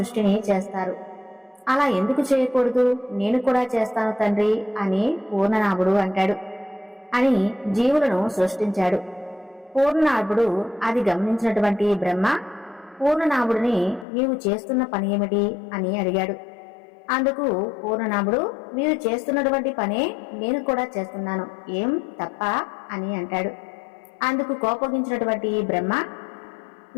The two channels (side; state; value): right; drops out; at 14.1 s